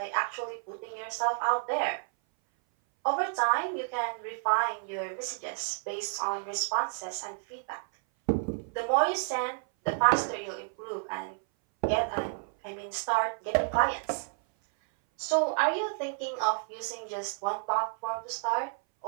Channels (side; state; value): left; silent; 57 dB below the other